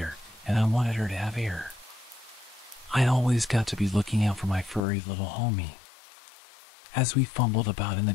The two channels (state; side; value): drops out; right; at 4.8 s